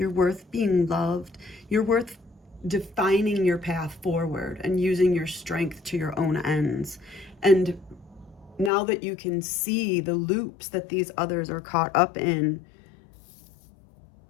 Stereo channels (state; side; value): drops out; right; at 8.7 s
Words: worth being loved. You're worth defining your path forward and using your strength to your own ends. And now that you can see the loops that these others are caught up in,